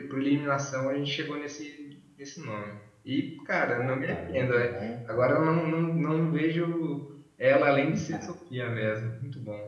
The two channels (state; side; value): identical; both; correlation 1.00